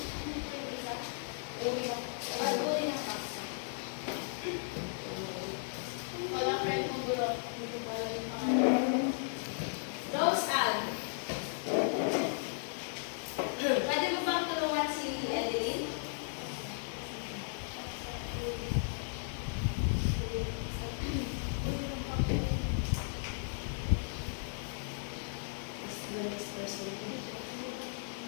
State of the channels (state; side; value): silent; right; digital silence